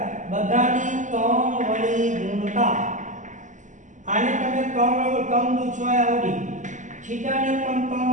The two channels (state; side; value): late; left; 0.36 ms